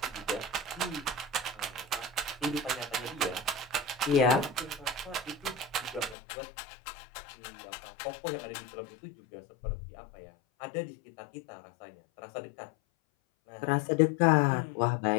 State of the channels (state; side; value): drops out; right; at 6.2 s